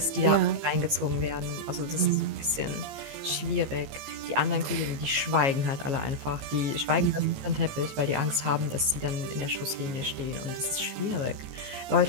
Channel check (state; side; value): late; left; 15 ms